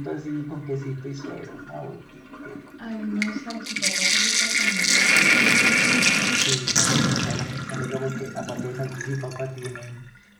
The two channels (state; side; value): identical; both; correlation 1.00